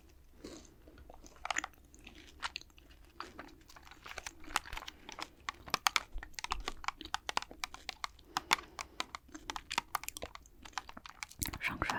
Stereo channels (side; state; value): both; identical; correlation 1.00